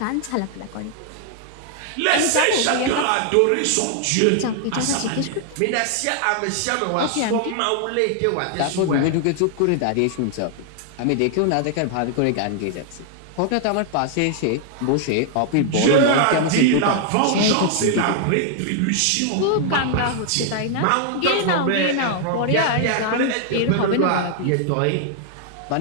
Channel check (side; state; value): both; different; correlation 0.00